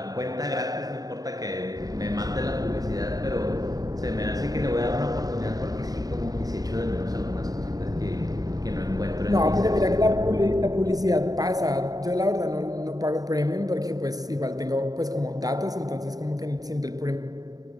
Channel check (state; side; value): late; left; 0.18 ms